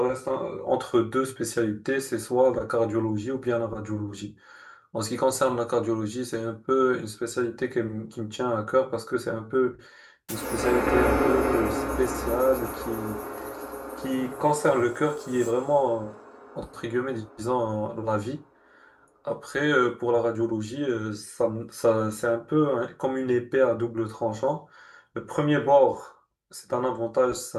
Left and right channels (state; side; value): identical; both; correlation 1.00